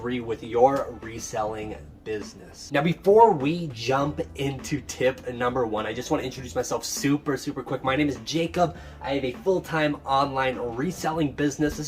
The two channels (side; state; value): both; identical; correlation 1.00